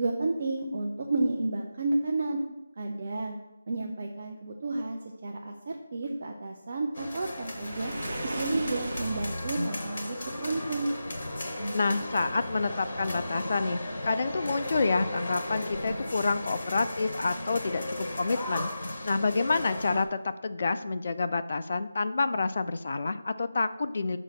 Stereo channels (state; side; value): inverted; both; correlation -0.90